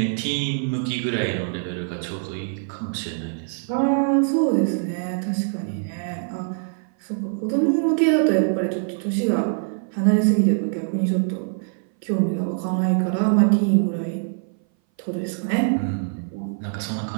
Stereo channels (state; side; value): silent; left; 59 dB below the other